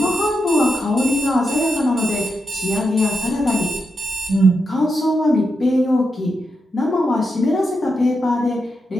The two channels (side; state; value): both; normal; correlation 0.86